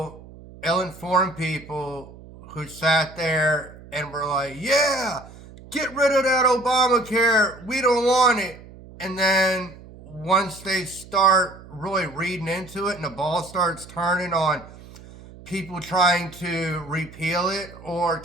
ill-informed people who sat there and were like, yeah, get rid of that Obamacare, we don't want it. And then once they start really reading into it and the ball starts turning on people trying to repeal it or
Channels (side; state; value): right; noise; hum, 19 dB below the sound